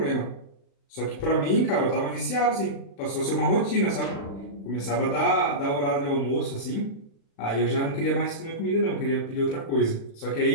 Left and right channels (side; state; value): right; late; 36 ms